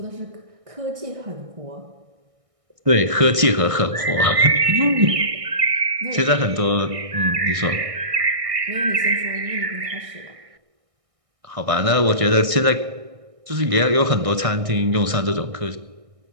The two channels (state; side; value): late; left; 1.6 ms